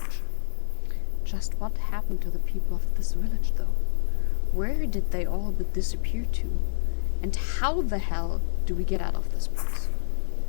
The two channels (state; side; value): silent; right; digital silence